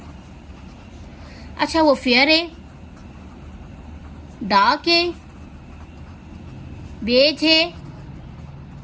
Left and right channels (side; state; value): both; identical; correlation 1.00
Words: अच्छा वो फेयर है, डार्क है, बेज है,